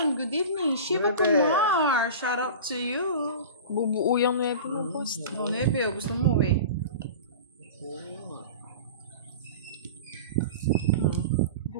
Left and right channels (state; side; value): inverted; both; correlation -0.33